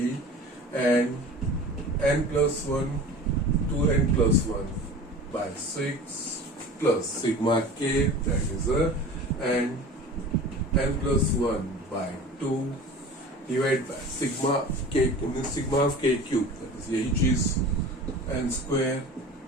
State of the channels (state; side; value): normal; both; correlation 0.38